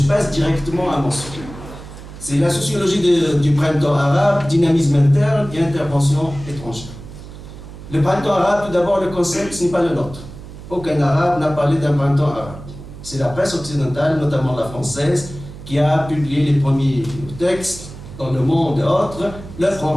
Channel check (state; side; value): noise; right; hum, 14 dB below the sound